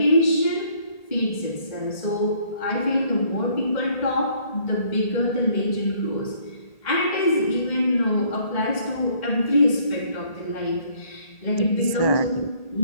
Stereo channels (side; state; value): right; late; 1.8 ms